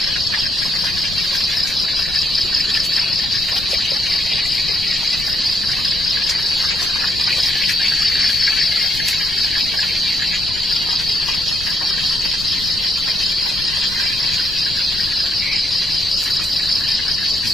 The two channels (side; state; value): left; noise; rumble, 13 dB below the sound